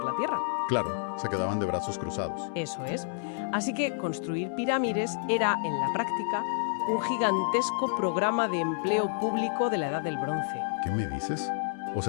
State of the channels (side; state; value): right; silent; 58 dB below the other